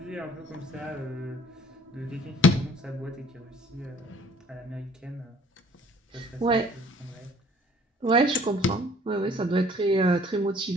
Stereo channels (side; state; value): both; normal; correlation 0.55